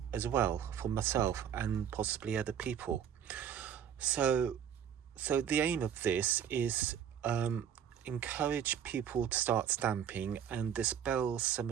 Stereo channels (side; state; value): left; quieter; 8.9 dB